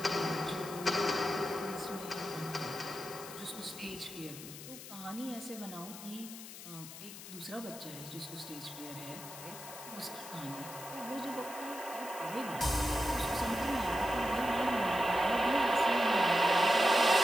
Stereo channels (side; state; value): left; noise; hiss, 13 dB below the sound